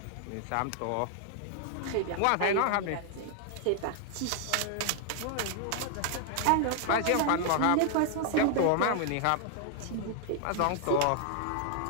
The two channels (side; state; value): both; different; correlation 0.00